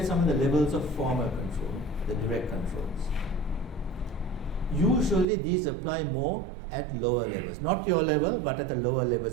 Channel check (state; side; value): drops out; left; at 5.2 s